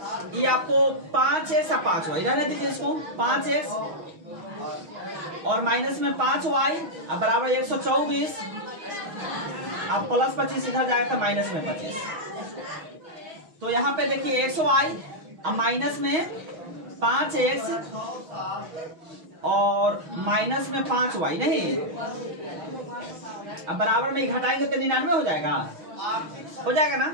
ये आपको 5x और 5y रहने दीजिए, इसको 5x और माइनस में 5y, अब बराबर 124, अब प्लस 25 इधर जाएगा तो माइनस में 25। तो यहाँ पे देखिए 100y, अब माइनस में 5x और माइनस में 5y, नहीं अब बराबर में घटाएंगे तो 99 हो जाएगा, हो जाएगा ना।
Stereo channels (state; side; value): late; left; 6.3 ms